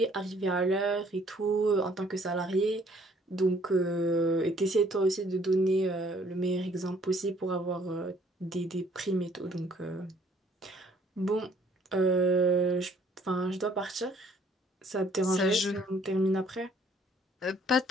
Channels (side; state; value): both; normal; correlation 0.61